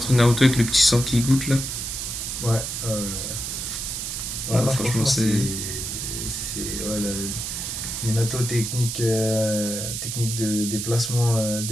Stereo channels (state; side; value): noise; right; hiss, 4 dB below the sound